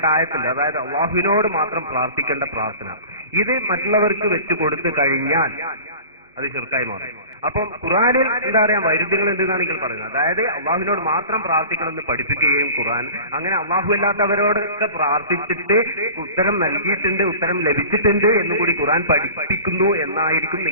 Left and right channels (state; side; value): inverted; both; correlation -0.39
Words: അതായത് അള്ളാഹുവിനോട് മാത്രം പ്രാർത്ഥിക്കേണ്ട പ്രാർത്ഥന, ഇത് മറ്റുള്ളവർക്ക് വെച്ചു കൊടുത്തു കഴിഞ്ഞാൽ അത് ശിർക്കായി മാറും. അപ്പം ഖുർആനിൽ എന്താ പറയാ വൈരുദ്ധ്യങ്ങൾ എന്തെന്നാണെങ്കിൽ പറയുന്നത്, അതായത് അള്ളാഹുവിനോട് മാത്രം പ്രാർത്ഥിക്കണമെന്ന് പഠിപ്പിക്കുകയും ഖുർആൻ അങ്ങനെ അള്ളാഹു അല്ലാത്തവരോടൊക്കെ പ്രാർത്ഥിച്ചിട്ട് ഉത്തരം നൽകിയിട്ടുണ്ട്, ഉത്തരം ലഭിച്ചിട്ടുണ്ട് എന്നുകൂടി ഖുർആൻ പഠിപ്പിക്കുന്നു എന്നായിരിക്കും